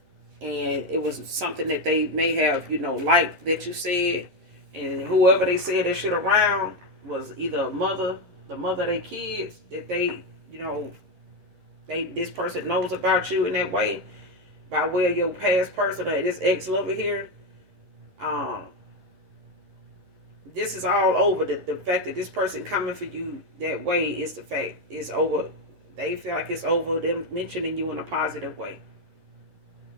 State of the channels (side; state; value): left; late; 11 ms